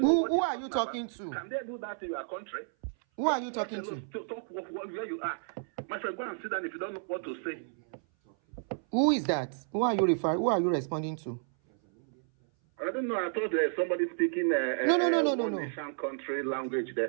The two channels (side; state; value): left; silent; 57 dB below the other